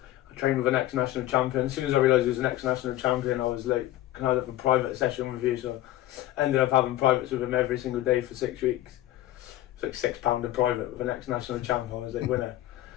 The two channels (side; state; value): right; quieter; 14.8 dB